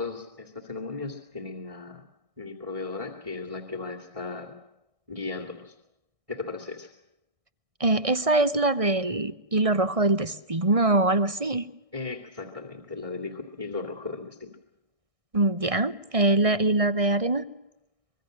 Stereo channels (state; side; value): late; left; 1.6 ms